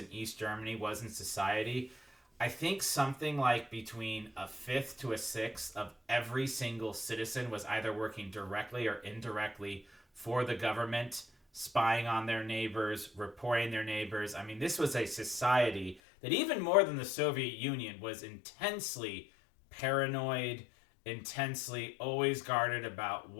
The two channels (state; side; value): drops out; right; at 16.0 s